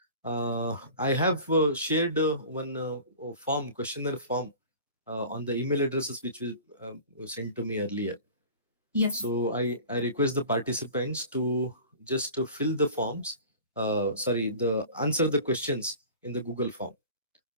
I have shared one form, questionnaire form, on the email addresses which was sent to me earlier. Yes, So I request the participants to just to fill the forms. Sorry, the answer the questions in the Google form.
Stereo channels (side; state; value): both; inverted; correlation -0.40